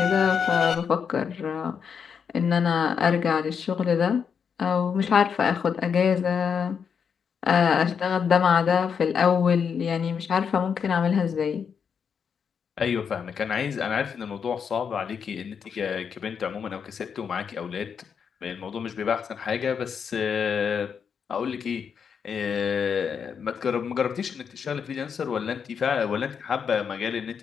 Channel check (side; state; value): right; quieter; 6.8 dB